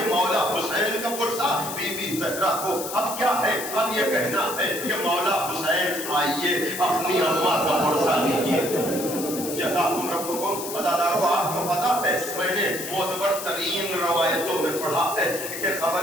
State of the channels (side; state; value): left; noise; hiss, 8 dB below the sound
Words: مولا حسین کا پرسہ بی بی زہرا کو، اب کیا ہے، اب یہ کہنا ہے کہ مولا حسین آئیے اپنی اماں کا پرسہ لیجیے. جزاکم ربکم. عزادارو آپ کو پتا ہے میں نے معتبر ترین روایتوں میں پڑھا ہے کہ